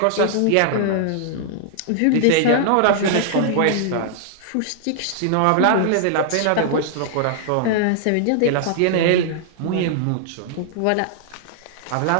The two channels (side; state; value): both; different; correlation -0.01